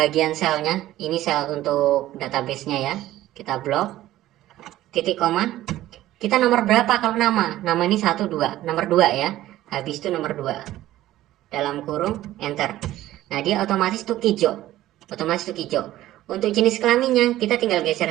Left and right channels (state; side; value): quieter; left; 14.7 dB